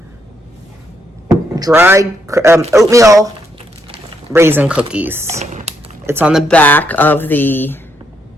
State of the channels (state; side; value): normal; both; correlation 0.76